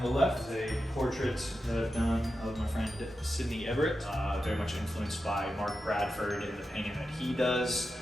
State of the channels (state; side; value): normal; both; correlation 0.90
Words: the left is a portrait that I've done of my friend Sidney Everett, very much influenced by Mark Bradford in the painting that he does